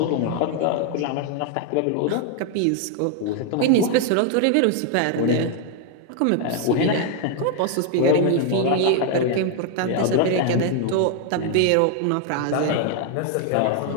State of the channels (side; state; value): both; different; correlation 0.00